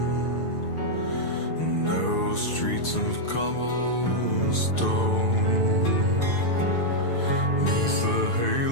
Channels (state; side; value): late; right; 6.7 ms